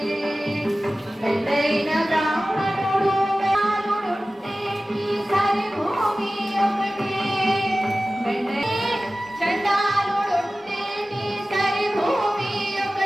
మెండైన బ్రాహ్మణుడు వ్యాలుడుంటే ఈ సరి భూమి ఒకటే మెండై చండాలుడుంటే ఈ సరి భూమి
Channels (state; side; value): normal; both; correlation 0.96